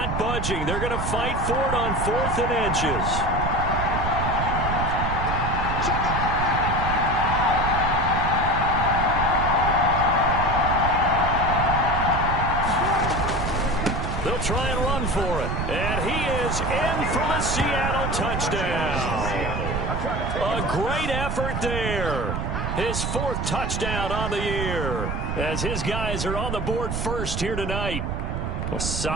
budging. They're going to fight for it on 4th and inches. They'll try and run for it. And he is in for the Seattle touchdown. A great effort there. His 4th touchdown on the year as his guys are on the board first here tonight. A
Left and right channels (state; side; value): noise; right; rumble, 2 dB below the sound